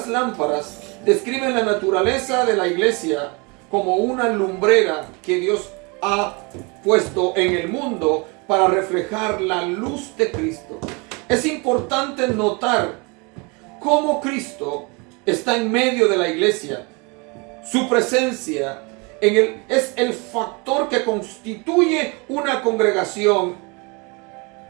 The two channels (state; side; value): quieter; left; 29.9 dB